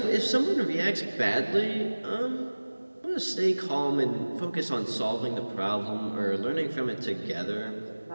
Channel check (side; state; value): both; inverted; correlation -1.00